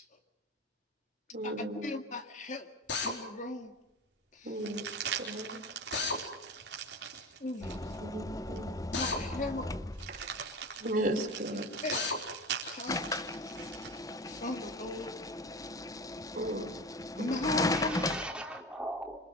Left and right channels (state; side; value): normal; both; correlation 0.29